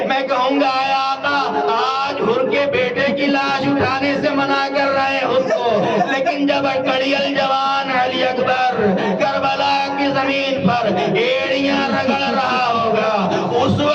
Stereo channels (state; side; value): identical; both; correlation 1.00